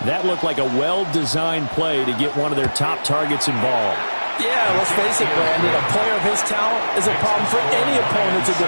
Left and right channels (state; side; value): inverted; both; correlation -1.00